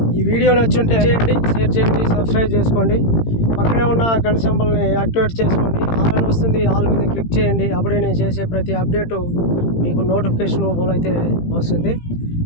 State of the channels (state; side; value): late; right; 18 ms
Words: ఈ వీడియో నచ్చుంటే చేయండి, షేర్ చేయండి, సబ్స్క్రైబ్ చేసుకోండి. పక్కనే ఉన్న గంట సింబల్ని యాక్టివేట్ చేసుకోండి. ఆల్ అని వస్తుంది, ఆల్ మీద క్లిక్ చేయండి. అప్పుడే నేను చేసే ప్రతి అప్డేటు మీకు నోటిఫికేషన్ రూపంలో అయితే వస్తుంది.